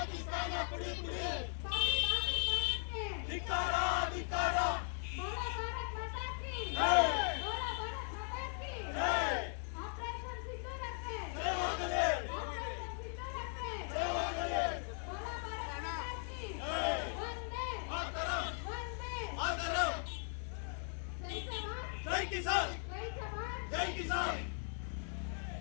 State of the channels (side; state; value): right; silent; 52 dB below the other